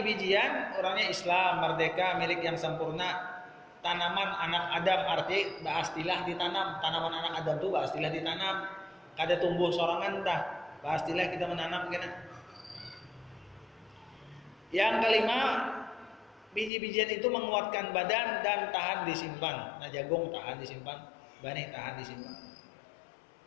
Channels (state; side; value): drops out; right; at 16.7 s